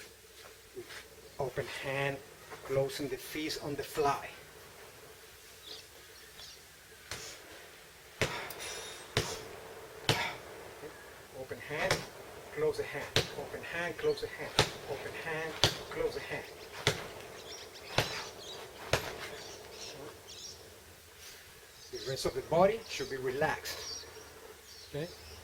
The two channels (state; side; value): identical; both; correlation 1.00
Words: with open hand, closing the fist on the fly. Open hand, close the hand, open hand, close the hand, open hand, close the hand. The rest of the body should be relaxed. Okay?